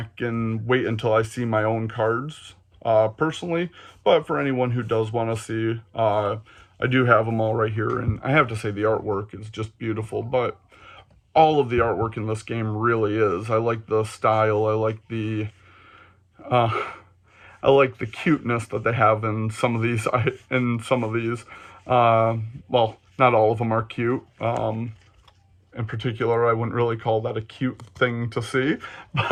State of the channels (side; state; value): both; identical; correlation 1.00